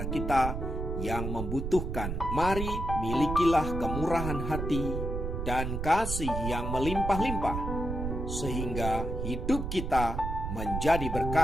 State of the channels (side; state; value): right; noise; rumble, 3 dB below the sound